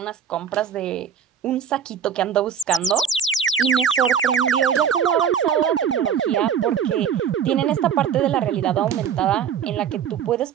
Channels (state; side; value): quieter; left; 8.0 dB